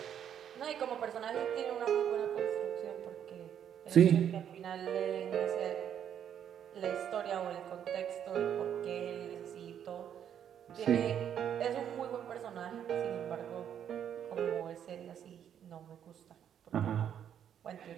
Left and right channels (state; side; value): quieter; left; 9.2 dB